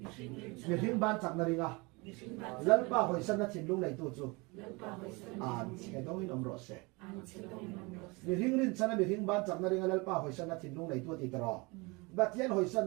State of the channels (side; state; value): left; quieter; 26.6 dB